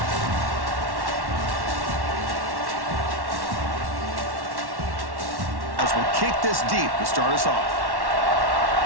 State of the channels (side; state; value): left; late; 1.1 ms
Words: As we'll kick this deep to start us off.